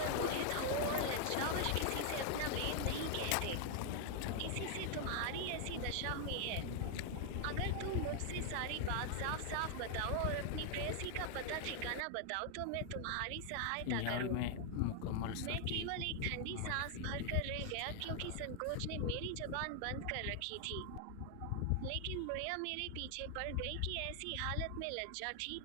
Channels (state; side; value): different; both; correlation 0.00